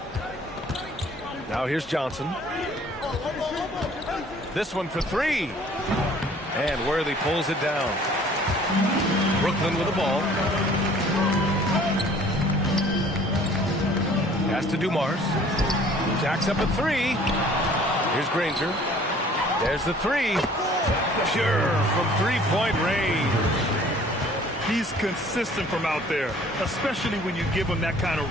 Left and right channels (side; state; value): both; normal; correlation 0.53